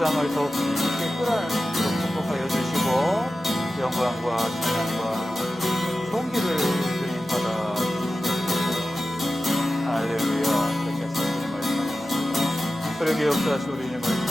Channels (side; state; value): both; normal; correlation 0.93